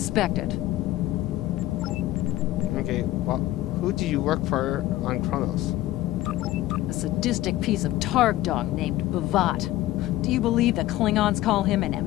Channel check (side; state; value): right; quieter; 15.5 dB